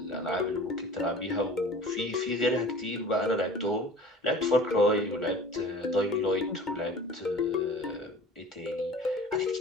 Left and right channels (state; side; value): normal; both; correlation 0.43